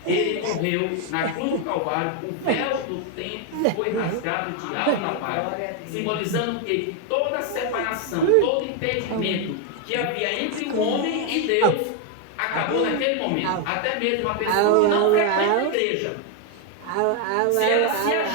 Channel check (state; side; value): different; both; correlation 0.01